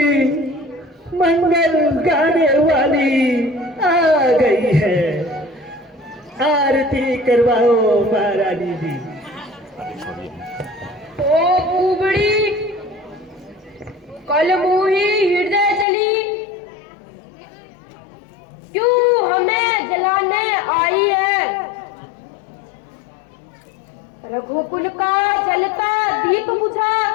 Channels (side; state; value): right; drops out; at 15.9 s